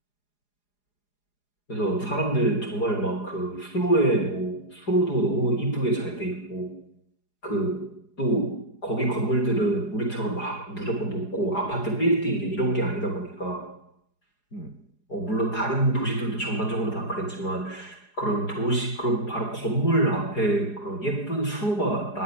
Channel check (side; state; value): right; late; 4.8 ms